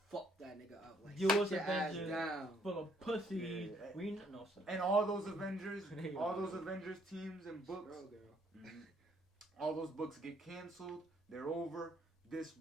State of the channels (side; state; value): both; normal; correlation 0.67